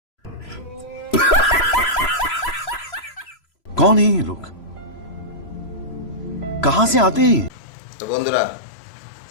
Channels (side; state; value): right; late; 3.0 ms